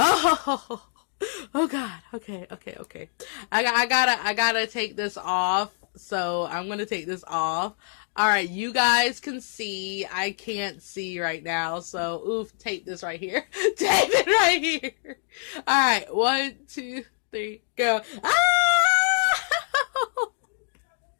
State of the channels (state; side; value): silent; right; digital silence